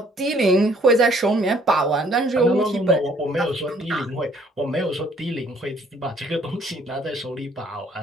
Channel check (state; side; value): normal; both; correlation 0.61